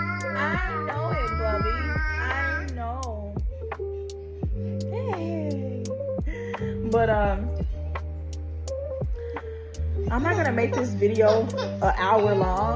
I know it, Bubby. I know. Hey. But I'm not gonna make this video an hour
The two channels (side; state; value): both; identical; correlation 1.00